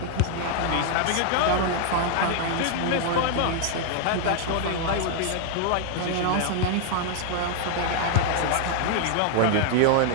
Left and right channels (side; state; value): both; different; correlation 0.00